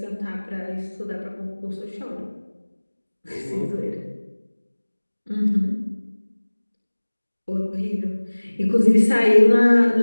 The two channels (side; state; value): both; inverted; correlation -1.00